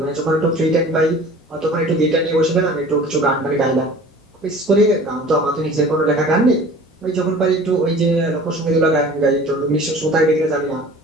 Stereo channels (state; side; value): normal; both; correlation 0.44